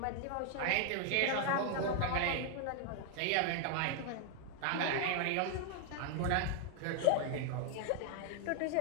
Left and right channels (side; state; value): both; different; correlation 0.00